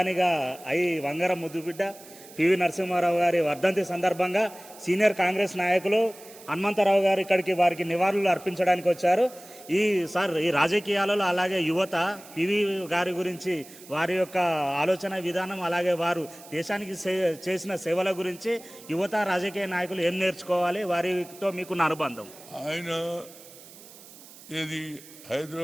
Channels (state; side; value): noise; right; hiss, 20 dB below the sound